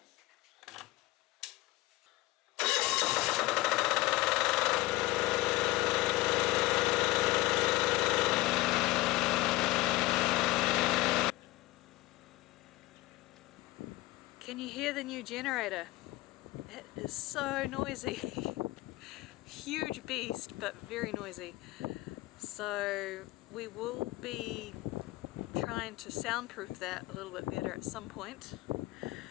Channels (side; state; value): right; quieter; 19.0 dB